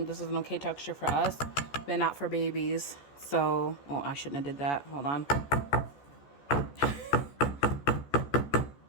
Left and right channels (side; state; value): right; late; 14 ms